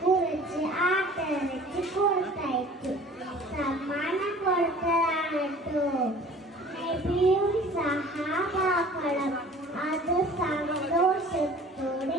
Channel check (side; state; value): both; normal; correlation 0.48